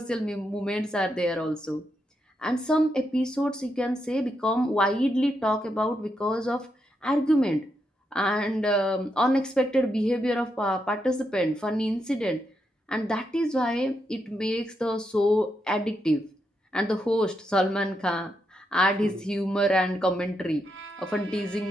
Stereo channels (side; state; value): both; normal; correlation 0.82